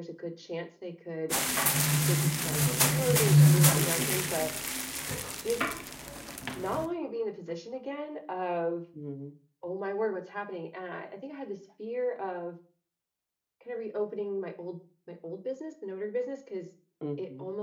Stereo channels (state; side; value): identical; both; correlation 1.00